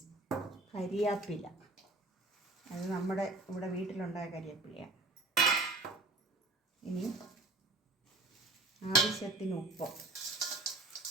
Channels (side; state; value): left; quieter; 3.1 dB